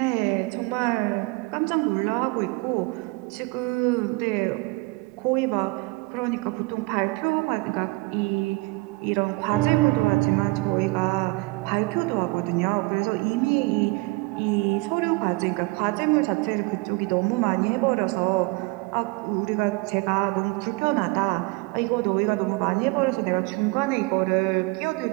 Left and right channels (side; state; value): left; quieter; 24.8 dB